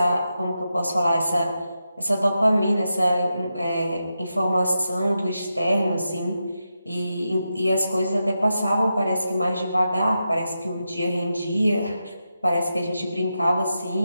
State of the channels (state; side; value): inverted; both; correlation -0.88